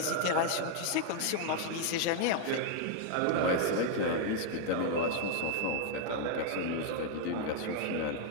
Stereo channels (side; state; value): both; different; correlation 0.00